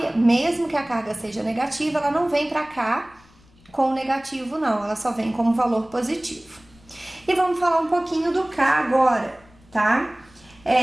Mesmo que a carga seja negativa, ela não vem pra cá com negativo não, ela só vem como valor positivo. E vamos falar um pouquinho do K agora, tá?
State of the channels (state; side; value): noise; left; rumble, 28 dB below the sound